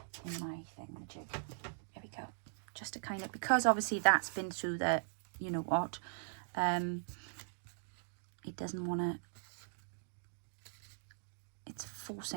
in my thingamajig. There we go. Just to kind of, because obviously that's been through the, you know what, it doesn't want to, it's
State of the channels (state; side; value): silent; left; digital silence